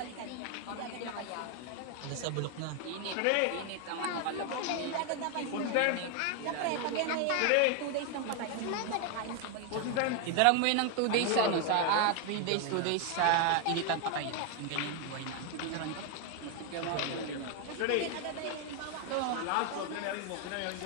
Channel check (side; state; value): both; different; correlation 0.01